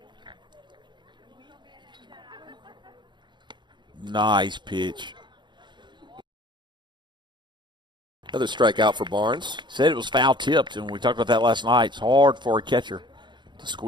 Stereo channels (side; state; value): left; late; 0.22 ms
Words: Nice pitch. Another strikeout for Barnes. Said it was foul tipped, and we talked about that last night. It's hard for a catcher to